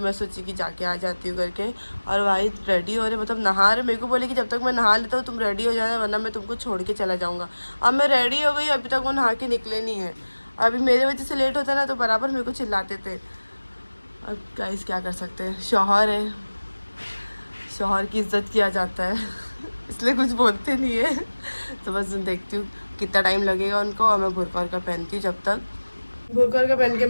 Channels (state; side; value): inverted; both; correlation -1.00